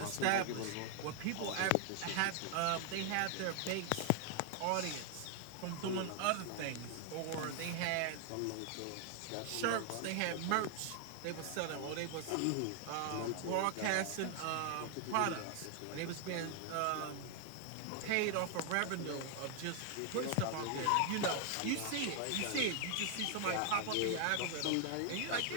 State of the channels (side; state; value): both; different; correlation 0.00